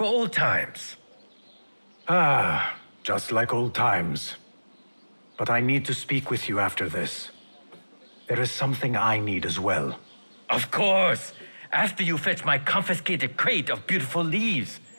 old times? Ah, just like old times. But I need to speak with you after this. There is something I need as well. Of course! After you fetch my confiscated crate of beautiful leaves.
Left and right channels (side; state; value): both; inverted; correlation -1.00